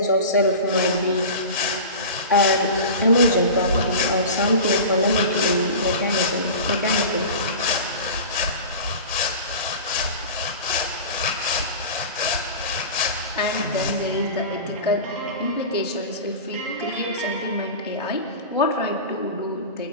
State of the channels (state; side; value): inverted; both; correlation -0.33